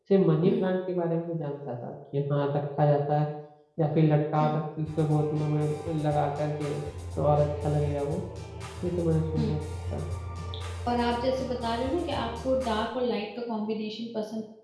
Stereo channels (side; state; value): both; identical; correlation 1.00